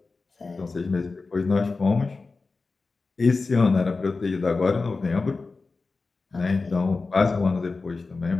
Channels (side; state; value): right; quieter; 3.9 dB